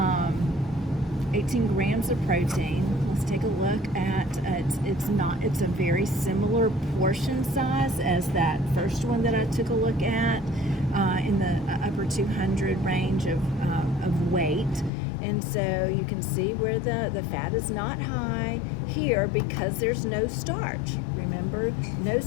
grams of protein. Let's take a look at it's a very similar portion size as that first one that I took a look at in the upper 200 range of weight. And so you can see where the fat is not high here because there's no starch. Remember, no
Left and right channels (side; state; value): right; drops out; at 14.9 s